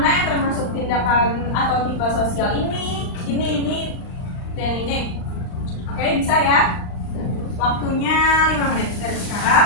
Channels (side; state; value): right; late; 39 ms